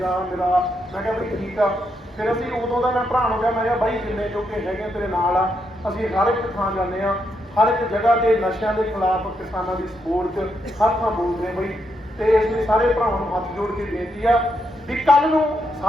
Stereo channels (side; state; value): both; normal; correlation 0.80